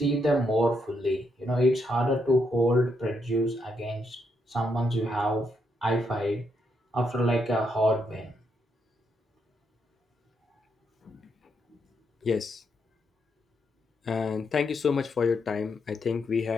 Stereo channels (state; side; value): normal; both; correlation 0.78